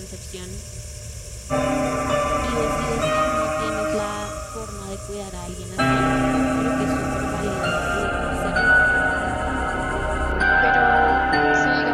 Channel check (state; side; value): identical; both; correlation 1.00